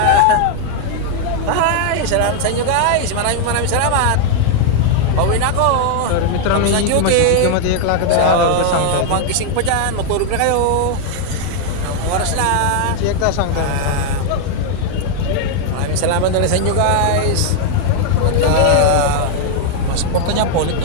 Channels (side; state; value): both; different; correlation 0.00